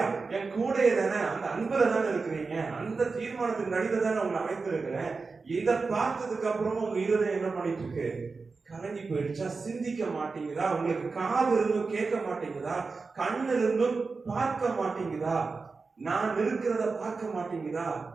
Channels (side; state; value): left; quieter; 4.3 dB